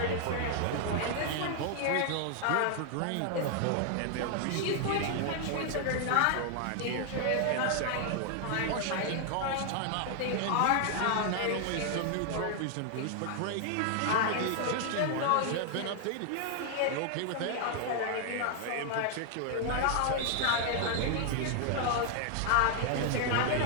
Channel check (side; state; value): both; different; correlation 0.00